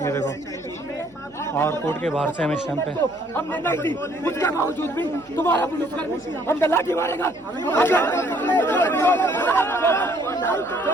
ये देखो। और कोर्ट के बाहर से हम इस टाइम पे, हमने नहीं दी, उसके बावजूद भी तुम्हारा पुलिसकर्मी हम लाठी मारेगा।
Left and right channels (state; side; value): noise; left; hum, 28 dB below the sound